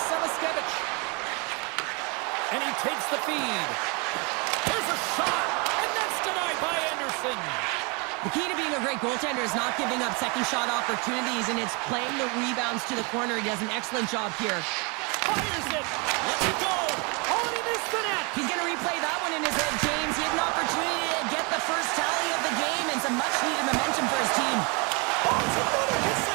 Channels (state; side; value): quieter; left; 31.3 dB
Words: And he takes the feed. There's a shot, and that's denied by Anderson. The key to being a great goaltender is not giving up second shot opportunities, and it's playing the rebounds to the corner. He does an excellent job here. Fires it. Let's it go. Oh, and he missed the net. He's going to replay that one in his head, James. He had an opportunity to get the first tally of the game and some much-needed momentum for his team. Oh, it's another